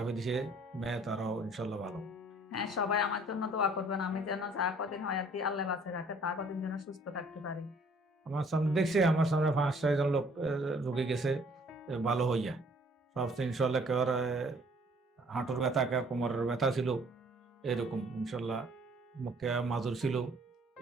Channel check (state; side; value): normal; both; correlation 0.58